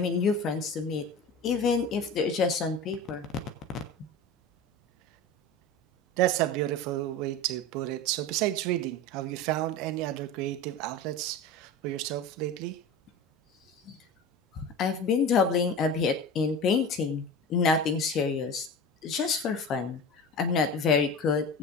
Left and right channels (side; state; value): both; normal; correlation 0.31